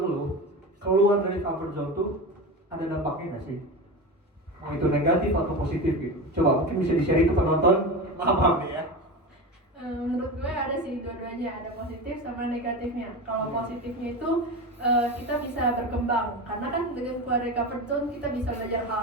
lu, keluar dari comfort zone tuh ada dampaknya nggak sih? Mau itu negatif atau positif gitu? Coba mungkin bisa di-share ke penonton. Maaf nih ya. Menurut gue ada sih dua-duanya, ada positif sama negatifnya. Kalau positifnya itu kita bisa berkembang, karena kan dengan keluar dari comfort zone kita bisa belajar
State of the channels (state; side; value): normal; both; correlation 0.24